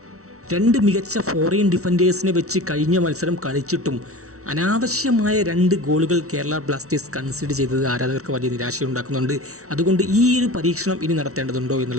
2 മികച്ച ഫോറിൻ ഡിഫൻഡേഴ്സിനെ വെച്ച് കഴിഞ്ഞ മത്സരം കളിച്ചിട്ടും അനാവശ്യമായ 2 ഗോളുകൾ കേരള ബ്ലാസ്റ്റേഴ്സ് കൺസിഡർ ചെയ്തത് ആരാധകർക്ക് വലിയ നിരാശയുണ്ടാക്കുന്നുണ്ട്. അതുകൊണ്ട് ഈ ഒരു പരീക്ഷണം ഇനി നടത്തേണ്ടതുണ്ടോ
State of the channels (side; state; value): left; late; 0.64 ms